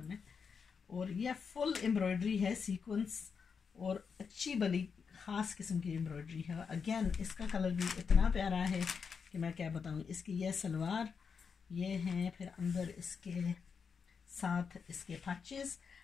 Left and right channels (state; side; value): quieter; right; 5.9 dB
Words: में, और यह फुल एम्ब्रॉयडरी है, सीक्वेंस और अच्छी बड़ी ख़ास किस्म की एम्ब्रॉयडरी है। अगेन इसका कलर भी इतना प्यारा है कि मैं क्या बताऊँ। इसकी यह सलवार ये है, फिर अंदर इसके साथ इसके पैचेस।